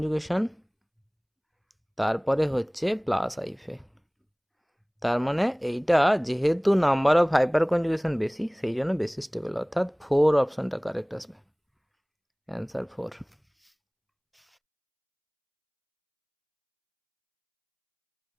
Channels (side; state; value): both; identical; correlation 1.00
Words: তারপরে হচ্ছে প্লাস আই এফেক্ট। তার মানে এইটা যেহেতু নাম্বার অফ হাইপার কনজুগেশন বেশি সেই জন্য বেশি স্টেবল, অর্থাৎ 4 অপশনটা কারেক্ট আসবে, অ্যান্সার 4।